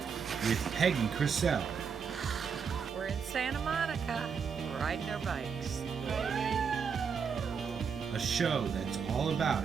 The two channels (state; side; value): quieter; left; 6.3 dB